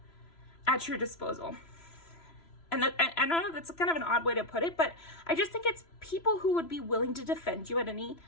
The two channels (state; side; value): late; right; 3.0 ms